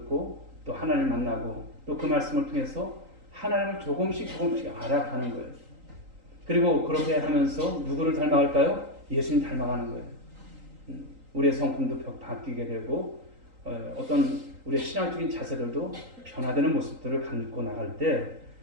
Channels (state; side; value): late; left; 3.8 ms